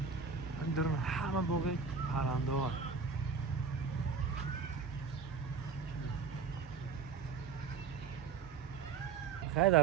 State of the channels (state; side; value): quieter; left; 5.4 dB